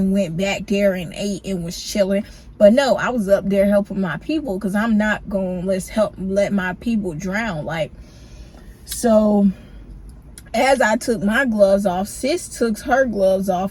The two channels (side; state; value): both; identical; correlation 1.00